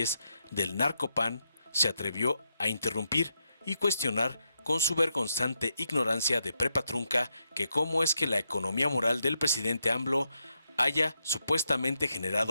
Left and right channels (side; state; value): both; inverted; correlation -0.82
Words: del Narcopan se atrevió a interrumpir y cuestionar con su vergonzante ignorancia de prepa trunca que cómo es que la economía moral del presidente AMLO haya supuestamente